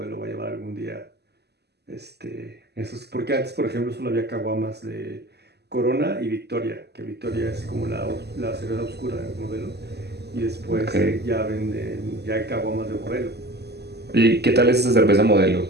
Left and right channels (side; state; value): left; late; 0.48 ms